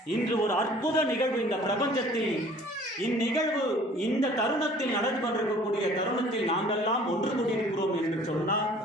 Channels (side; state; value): both; normal; correlation 0.51